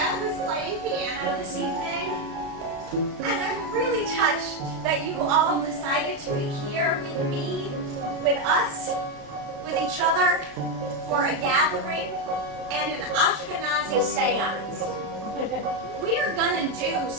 who's playing piano this evening. And I'm really touched that you all decided to be here with me, with us, with each other for a gathering and an Ashkenazi Seance. We are gonna do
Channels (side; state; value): left; late; 35 ms